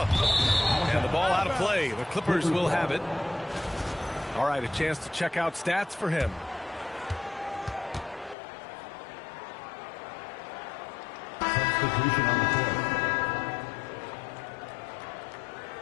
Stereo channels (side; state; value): right; drops out; at 8.3 s